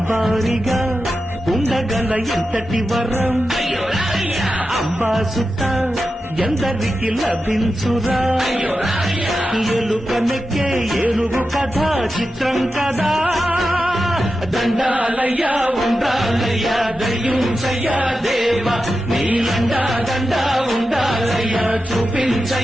ఉండగల ఎంతటి వరం అంబాసుత ఎందరికి లభించురా ఎలుకనెక్కే ఏనుగు కథ చిత్రం కదా దండాలయ్యా ఉండాలయ్యా దయ్యుంచయ్యా దేవ నీలండా దండా ఉండాలయ్యా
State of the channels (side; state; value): both; normal; correlation 0.91